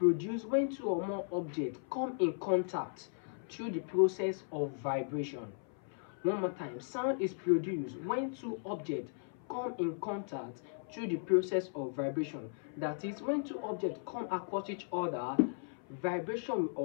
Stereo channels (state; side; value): silent; right; 53 dB below the other